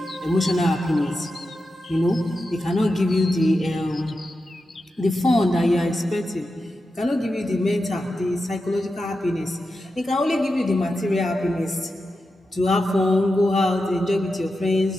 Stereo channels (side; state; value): both; normal; correlation 0.90